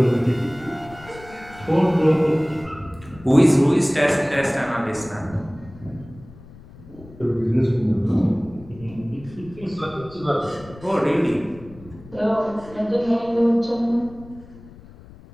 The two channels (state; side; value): noise; left; rumble, 20 dB below the sound